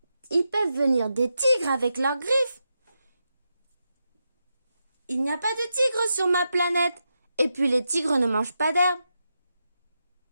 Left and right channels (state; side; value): inverted; both; correlation -0.87